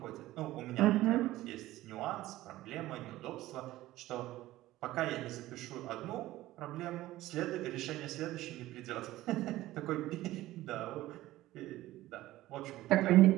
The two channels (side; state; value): left; quieter; 16.2 dB